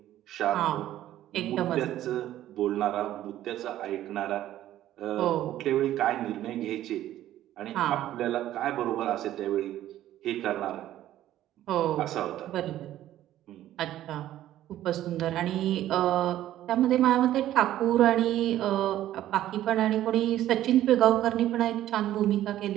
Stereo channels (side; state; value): left; quieter; 13.1 dB